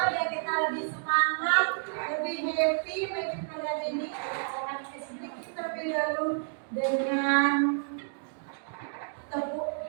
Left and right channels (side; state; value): left; silent; digital silence